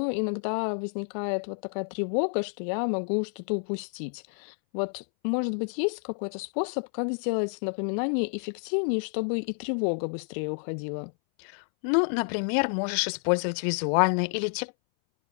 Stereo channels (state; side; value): silent; right; 59 dB below the other